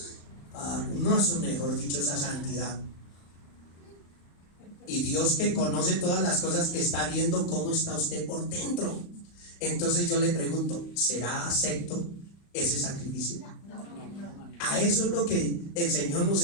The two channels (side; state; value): right; late; 35 ms